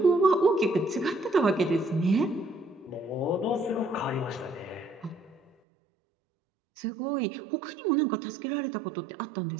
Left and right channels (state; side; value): drops out; left; at 5.5 s